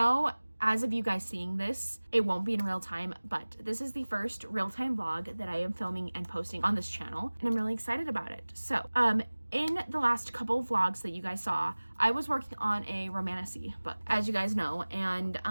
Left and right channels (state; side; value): inverted; both; correlation -1.00